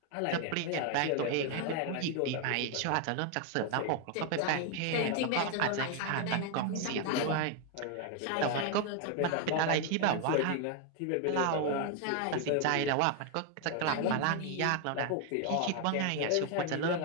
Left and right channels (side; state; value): both; different; correlation 0.01